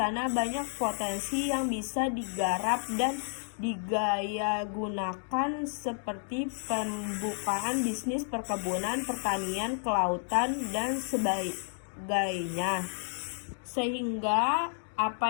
banyak potensi yang bisa digarap dan digayagunakan seperti pembukaan bisnis perkebunan, pertanian, kelautan, dan sebagainya. Sehingga apa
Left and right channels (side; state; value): right; silent; digital silence